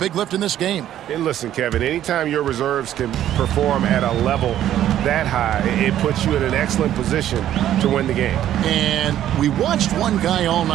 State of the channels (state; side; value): quieter; left; 11.8 dB